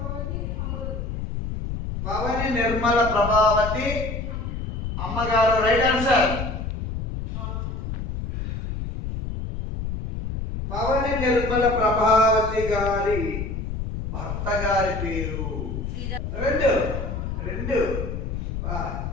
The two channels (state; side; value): noise; left; rumble, 4 dB below the sound